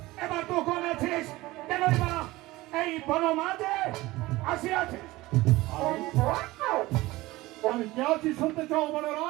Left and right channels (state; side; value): quieter; left; 19.3 dB